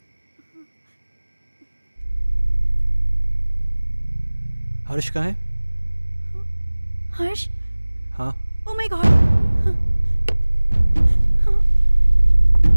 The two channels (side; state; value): both; inverted; correlation -1.00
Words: हर्ष कहाँ है? हर्ष? हाँ, ओह माय गॉड।